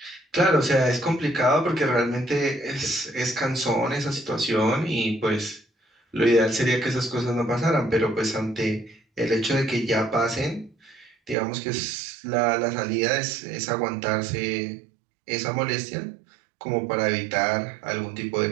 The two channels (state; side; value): drops out; left; at 11.4 s